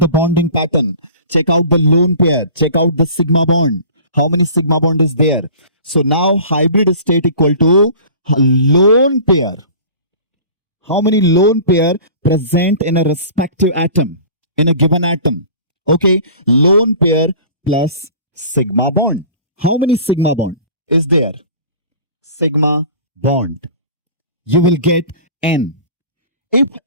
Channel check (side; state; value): both; inverted; correlation -0.42